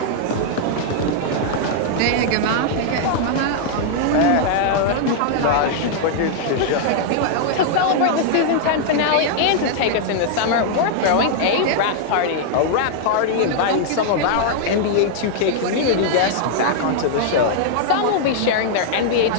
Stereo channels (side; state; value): both; different; correlation -0.01